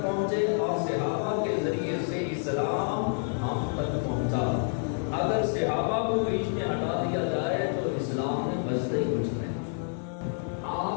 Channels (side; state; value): right; silent; digital silence